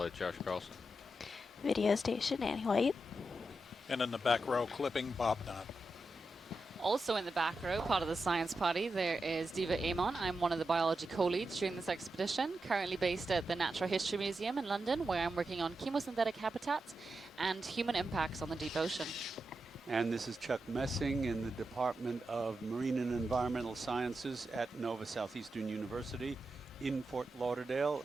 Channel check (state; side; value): normal; both; correlation 0.88